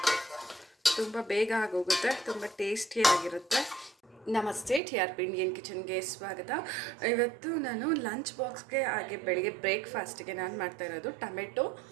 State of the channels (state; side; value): drops out; left; at 4.8 s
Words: ತುಂಬ ಬೇಗ ಆಗೋಗುತ್ತೆ, ತುಂಬ ಟೇಸ್ಟಿಯಾಗಿರುತ್ತೆ. ನಮಸ್ತೆ, TRP ಇಂಡಿಯನ್ ಕಿಚನ್ಗೆ ಸ್ವಾಗತ. ಇವತ್ತು ನಾನು ಲಂಚ್ ಬಾಕ್ಸ್ಗೆ ಹಾಗೆ ಬೆಳಿಗ್ಗೆ ಬ್ರೇಕ್ಫಾಸ್ಟ್ಗೆ ನಾನು ಮಾಡ್ತಾ ಇರೋದು ಟೊಮೆಟೊ